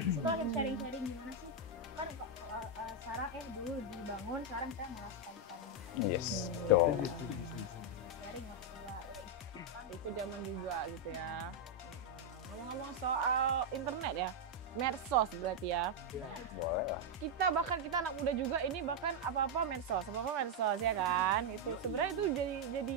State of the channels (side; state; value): both; normal; correlation -0.01